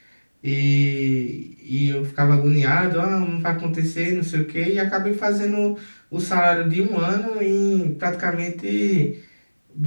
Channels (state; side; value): inverted; both; correlation -1.00